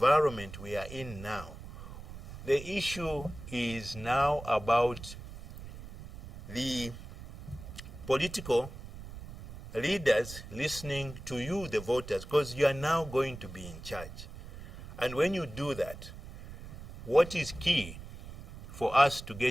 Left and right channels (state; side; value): noise; right; rumble, 13 dB below the sound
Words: we are in now, the issue is now about the political leaders listening to you, the voters, because you are now going to be in charge. And when you do that, what is key for us to